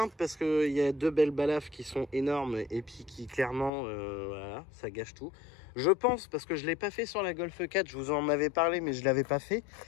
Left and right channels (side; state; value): right; drops out; at 3.7 s